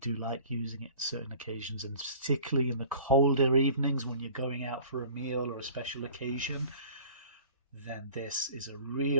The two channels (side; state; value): both; inverted; correlation -0.46